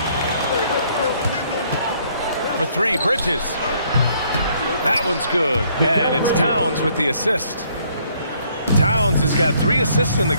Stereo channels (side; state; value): both; inverted; correlation -0.65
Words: For 3, Bridges. That one's good. And it's Towns with the assist. Towns has got 3 assists in the